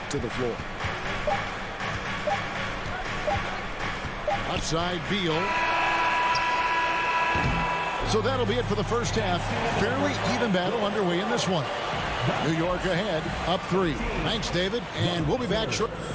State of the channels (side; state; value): both; identical; correlation 1.00